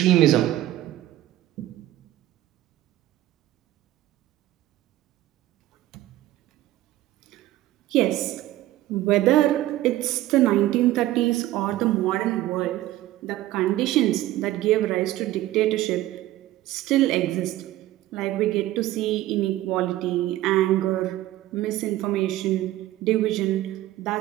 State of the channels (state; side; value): quieter; left; 15.0 dB